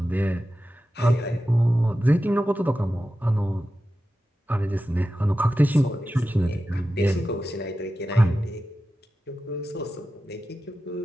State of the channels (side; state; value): both; normal; correlation 0.93